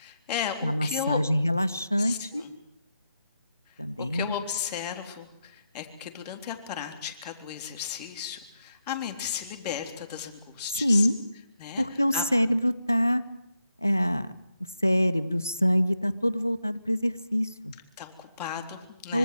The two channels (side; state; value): both; inverted; correlation -0.85